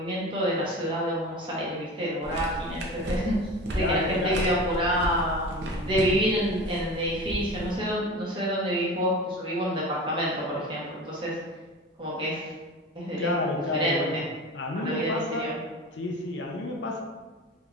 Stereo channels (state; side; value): normal; both; correlation 0.33